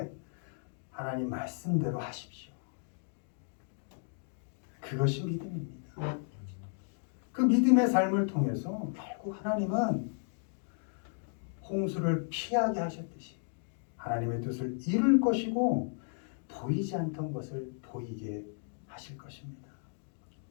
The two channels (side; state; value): right; silent; 55 dB below the other